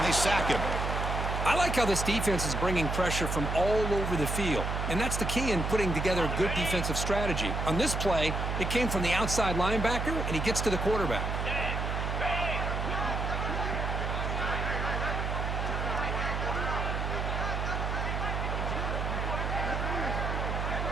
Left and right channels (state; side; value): noise; right; hum, 1 dB below the sound